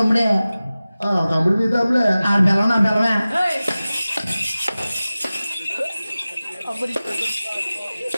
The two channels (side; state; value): both; inverted; correlation -0.97